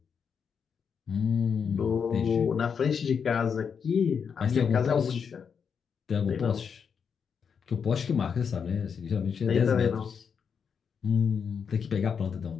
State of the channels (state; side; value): quieter; right; 6.6 dB